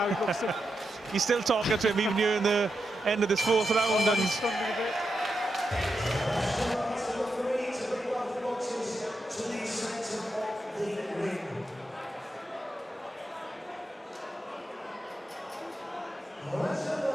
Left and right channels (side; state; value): both; normal; correlation 0.86